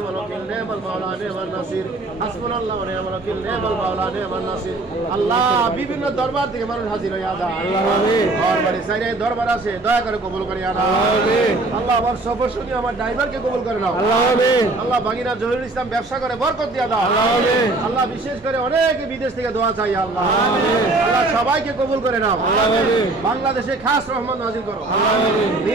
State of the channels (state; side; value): quieter; left; 3.1 dB